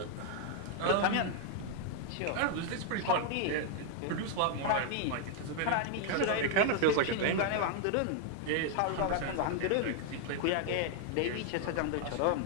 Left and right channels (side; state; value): both; different; correlation 0.00